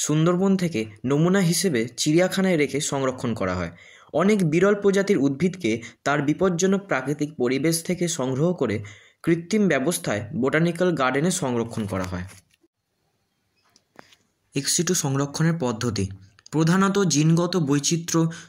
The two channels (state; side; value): identical; both; correlation 1.00